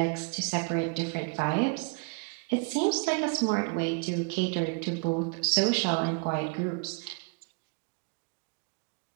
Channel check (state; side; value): quieter; left; 33.3 dB